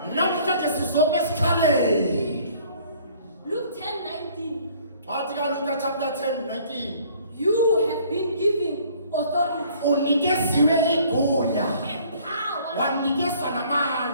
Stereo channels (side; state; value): both; inverted; correlation -0.57